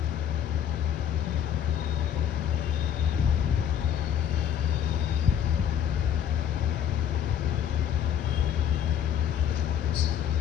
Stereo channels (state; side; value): quieter; right; 9.2 dB